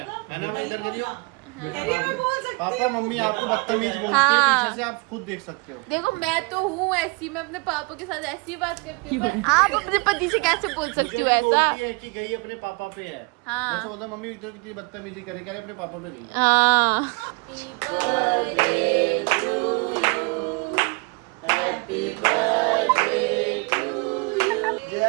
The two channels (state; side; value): quieter; left; 29.9 dB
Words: ना? मैं इधर करियो। पापा मम्मी आपको बदतमीज बोलते हैं, पीछे से आप खुद देख सकते हो। देखो मैं तो हूँ ऐसी, मैं अपने पापा के साथ ऐसी बात करती हूँ, पर आप अपने पति से कैसे बोल सकती हो ऐसा? है कि गई अपने पापा पे है। हाँ। मैं सोचता मम्मी तो कितनी बदतमीजी करे, कह रहे अपने पापा पे गई है। हाँ।